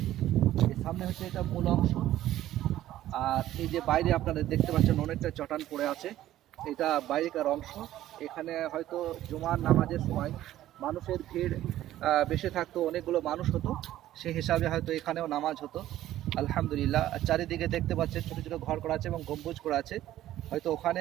এর সামনে হচ্ছে এটা মূল অংশ। আর এই যে বাইরে আপনারা দেখতে পাচ্ছেন অনেকটা চটান পড়ে আছে, এটা বাইরেকার অংশ। এখানে হয়তো জুমার নামাজের সময় মানুষের ভিড় বেশি থাকতো, অনেকগুলো মানুষ হতো, সেই হিসাবে হয়তো এখানেও নামাজ হতো। আলহামদুলিল্লাহ। চারিদিকে দেখতে পাচ্ছেন ছোটো ছোটো ঘর করা আছে এবং গম্বুজ করা আছে, হয়তো ওখানে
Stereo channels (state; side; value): quieter; left; 13.6 dB